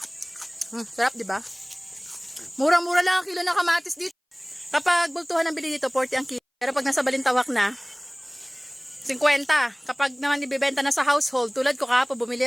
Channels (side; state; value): both; identical; correlation 1.00